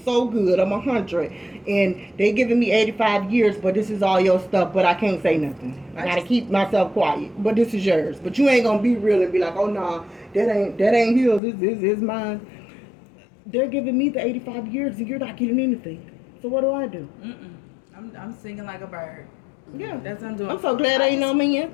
good, I'm 100, and they giving me 85 years, but this is all your stuff, but I can't say nothing. I got to keep myself quiet, but this is yours. But you ain't going to be real and be like, oh, nah, that ain't his, this is mine. They're giving me the 85 years, and you're not getting anything. So what do I do? I'm singing like a bird. Yeah, that's what I'm doing. I'm so glad ain't no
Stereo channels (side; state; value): right; drops out; at 11.4 s